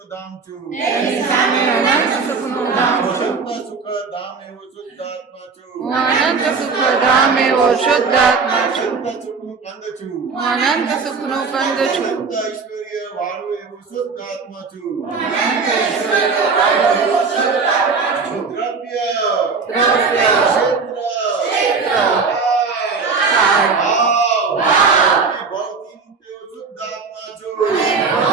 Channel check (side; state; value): left; quieter; 4.9 dB